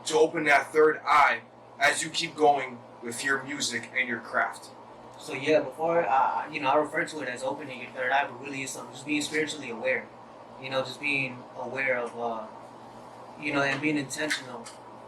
to open that third eye as you keep going with your music and your craft? So yeah, before I refer to it as opening your third eye, but really it's something just being spiritually aware. Just being aware of and being intentional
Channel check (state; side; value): identical; both; correlation 1.00